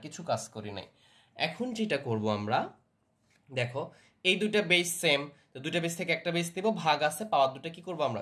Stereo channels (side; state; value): both; identical; correlation 1.00